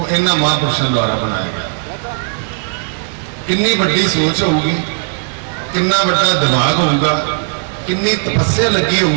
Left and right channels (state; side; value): silent; left; 60 dB below the other